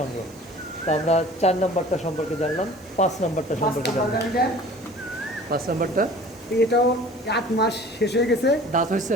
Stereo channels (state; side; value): noise; right; hiss, 27 dB below the sound